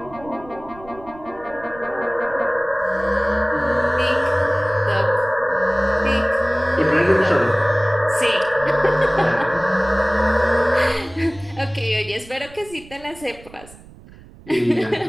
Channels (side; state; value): right; noise; rumble, 21 dB below the sound